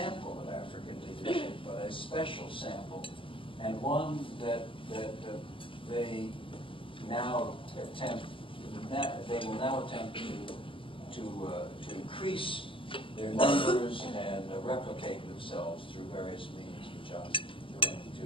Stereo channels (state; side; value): late; right; 0.25 ms